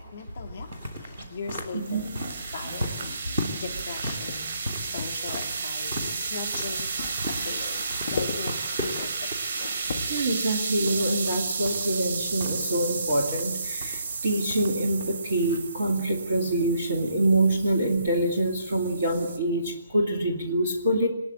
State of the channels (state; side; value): inverted; both; correlation -0.72